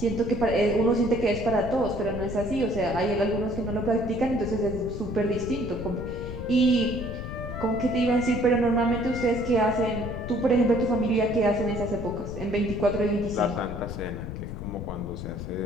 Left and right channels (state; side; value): noise; left; rumble, 8 dB below the sound